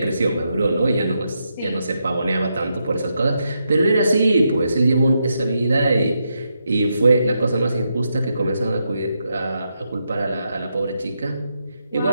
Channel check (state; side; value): inverted; both; correlation -0.83